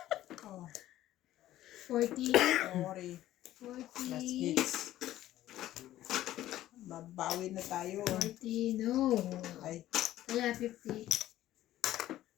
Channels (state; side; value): quieter; right; 14.0 dB